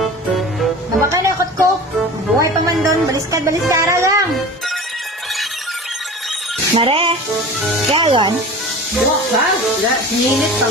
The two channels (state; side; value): normal; both; correlation 0.36